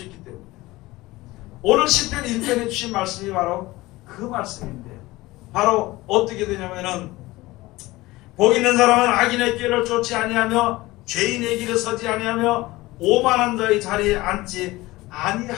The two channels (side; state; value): right; quieter; 19.5 dB